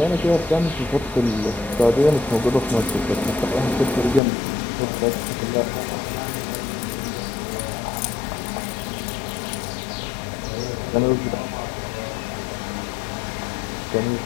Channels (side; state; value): right; drops out; at 4.2 s